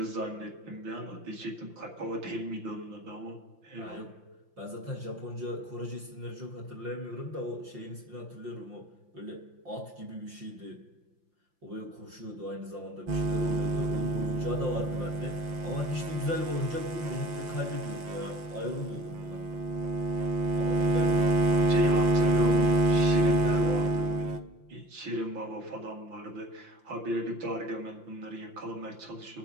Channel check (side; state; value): left; late; 5.8 ms